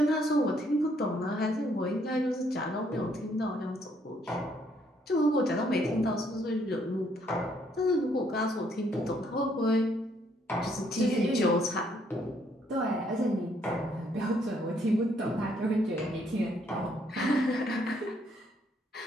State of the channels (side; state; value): both; normal; correlation 0.69